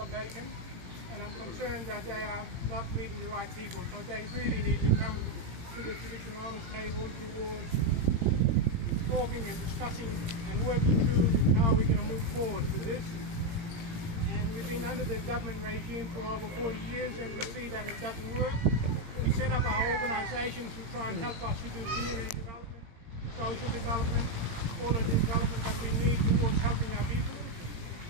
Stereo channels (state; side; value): late; left; 17 ms